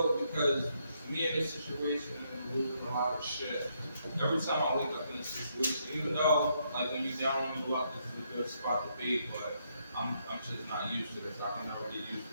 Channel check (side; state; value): both; inverted; correlation -0.75